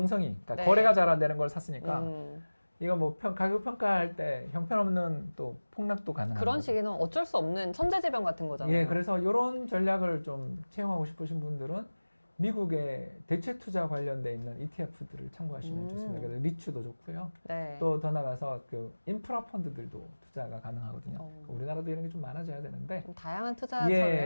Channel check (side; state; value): both; inverted; correlation -1.00